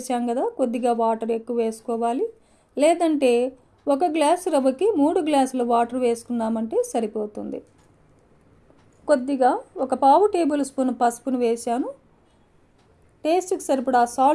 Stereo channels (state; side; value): identical; both; correlation 1.00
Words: కదా, కొద్దిగా వాటర్ ఎక్కువ వేసుకోవాలి. లేదంటే 1 గ్లాసు రవ్వకి 3 గ్లాసుల వాటర్ వేసుకున్నామంటే సరిపోతుంది. కొద్దిగా ఒక 1/2 టేబుల్ స్పూన్ పసుపును వేసాను. టేస్ట్కి సరిపడా